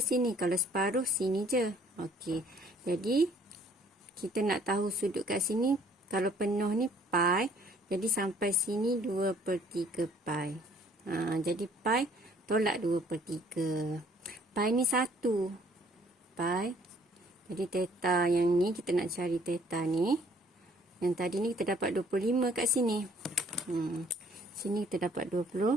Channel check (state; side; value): normal; both; correlation 0.60